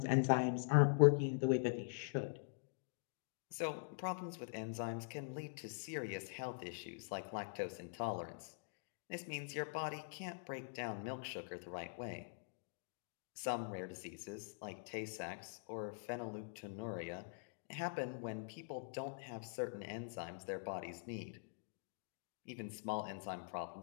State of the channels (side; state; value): right; silent; digital silence